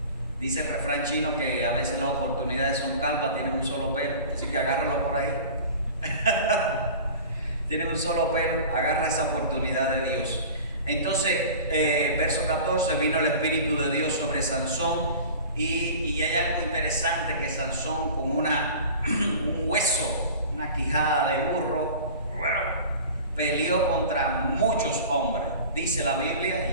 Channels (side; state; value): both; inverted; correlation -0.40